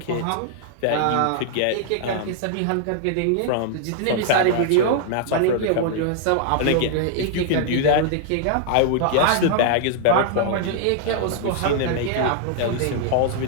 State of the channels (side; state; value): both; different; correlation -0.01